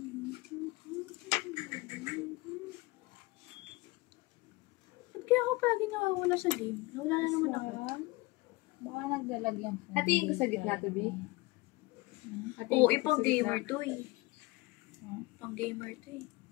Ba't kaya ako palagi nakawala sa game? Nawala na naman ako. Baka nagdalag yung phone. Hatiin ko sa gitna to, B. Oo, ipang gamer to eh. Pang gamer to eh.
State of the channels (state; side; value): quieter; right; 22.0 dB